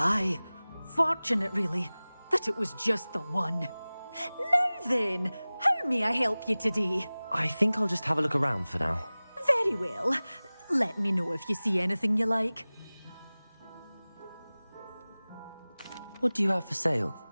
Fortunate, really, that it was just the one. Now then, how may I help you today? I think I'll just have a look around for now. Very well. Let me know if you see anything you like. What do you have for sale?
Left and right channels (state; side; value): inverted; both; correlation -0.99